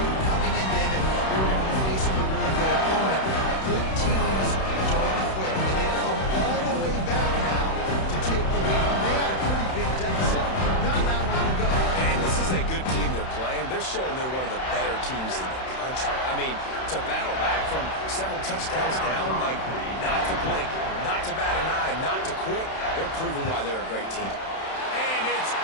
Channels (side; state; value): right; late; 31 ms